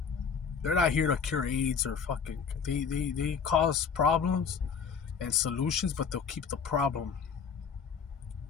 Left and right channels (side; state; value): right; quieter; 6.3 dB